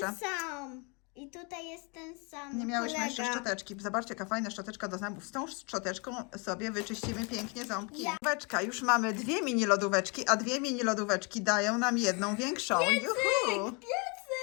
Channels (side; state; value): right; quieter; 32.5 dB